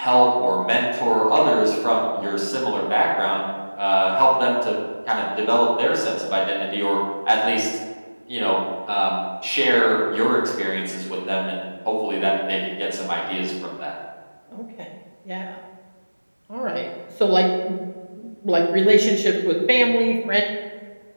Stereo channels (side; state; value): both; inverted; correlation -1.00